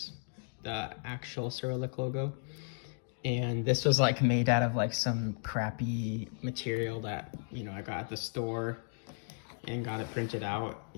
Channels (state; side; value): silent; right; 55 dB below the other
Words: the actual Cyrillic logo. And this was like made out of like some crappy material that, you know, I got at the store and got it printed out.